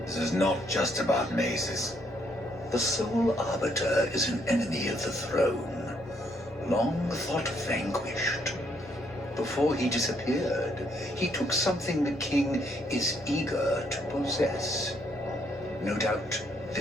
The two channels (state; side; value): normal; both; correlation 0.71